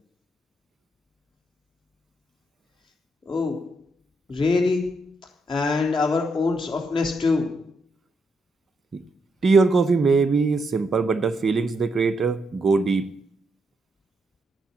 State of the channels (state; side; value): normal; both; correlation 0.79